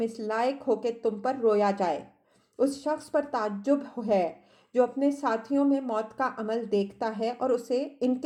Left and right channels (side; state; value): both; identical; correlation 1.00